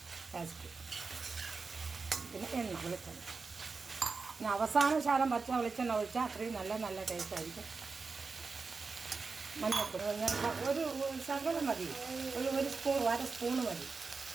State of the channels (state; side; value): quieter; left; 4.4 dB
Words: ടേസ്റ്റ്, പിന്നെ എണ്ണ വെളിച്ചെണ്ണ. പിന്നെ അവസാന ശാലം പച്ച വെളിച്ചെണ്ണ ഒഴിച്ചാൽ അത്രയും നല്ല ടേസ്റ്റ് ആയിരിക്കും. മഞ്ഞപ്പൊടി ഒരു ശകലം മതി. ഒരു സ്പൂൺ, 1/2 സ്പൂണ് മതി.